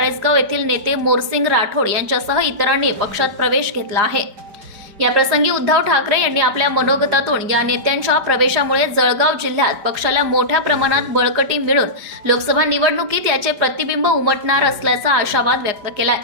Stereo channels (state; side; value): late; left; 4.9 ms